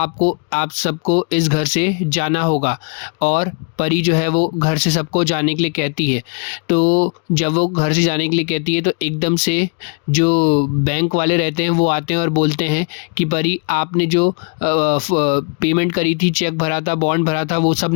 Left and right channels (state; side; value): quieter; right; 35.9 dB